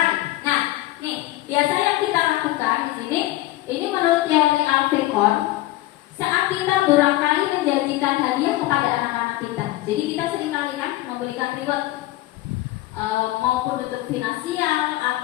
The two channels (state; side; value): quieter; right; 16.8 dB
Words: Nah nih biasa yang kita lakukan di sini, ini menurut teori Alfecon, saat kita barangkali menjanjikan hadiah kepada anak-anak kita. Jadi kita seringkali kan memberikan reward maupun bentuk finansial